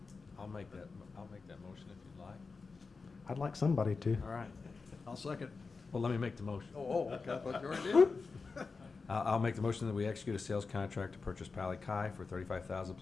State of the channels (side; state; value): right; quieter; 4.4 dB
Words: I'll make that motion if you'd like. I'd like somebody to. All right. I'll second. Well, let me make the motion. Okay, I thought you already did. I'll make the motion that we execute a sales contract to purchase Pali Kai for $35,000